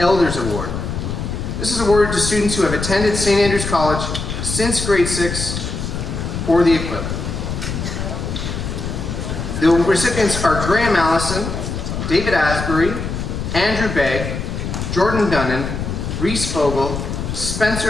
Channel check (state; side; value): noise; left; rumble, 4 dB below the sound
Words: Award. This is awarded to students who have attended St. Andrews College since grade 6 or the equivalent. The recipients are Graham Allison, David Asbury, Andrew Begg, Jordan Dunnan, Reese Vogel,